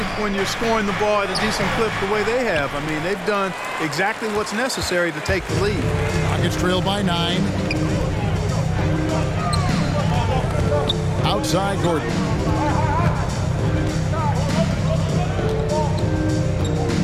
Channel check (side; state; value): both; identical; correlation 1.00